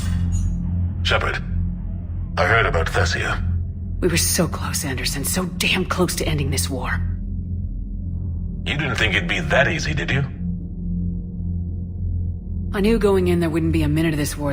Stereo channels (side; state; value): both; identical; correlation 1.00